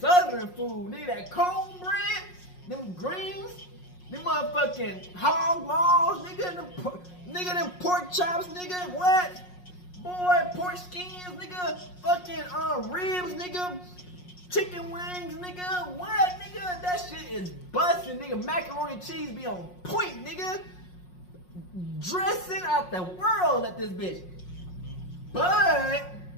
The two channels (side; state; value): right; late; 5.5 ms